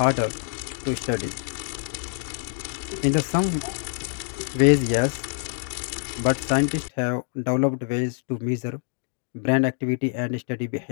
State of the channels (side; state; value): right; silent; digital silence